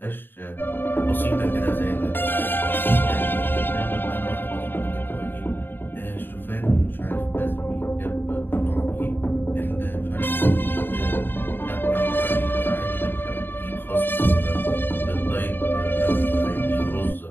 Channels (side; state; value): right; late; 0.096 ms